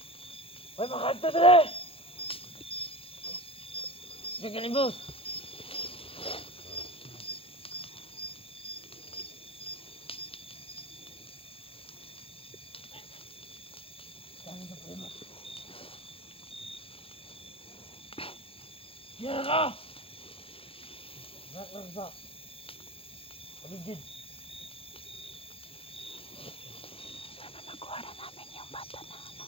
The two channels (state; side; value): late; right; 0.27 ms